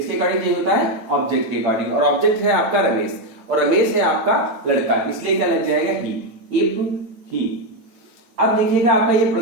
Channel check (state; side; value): late; left; 8.8 ms